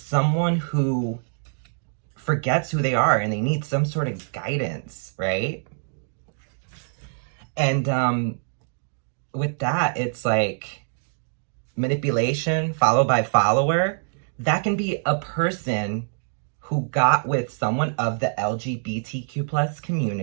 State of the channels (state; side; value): silent; left; digital silence